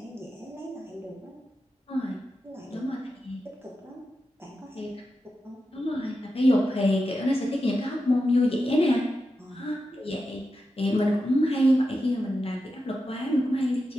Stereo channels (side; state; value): both; normal; correlation 0.89